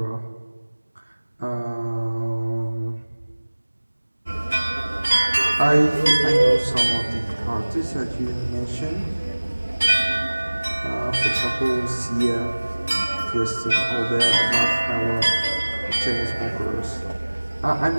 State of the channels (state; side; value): inverted; both; correlation -1.00